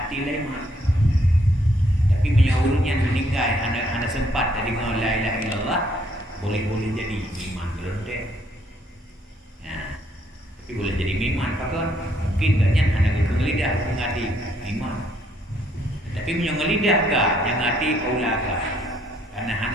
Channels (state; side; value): normal; both; correlation 0.69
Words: lemak. Tapi menyaurunya meninggal anak-anak sempat dari la ilaha illallah boleh-boleh jadi iman berendek. Ya. Tapi boleh jadi iman pakon mungkin banyak anak itu ngelidah mengadi iman. Tapi menyongelidah ka yang hati aula ka. Karena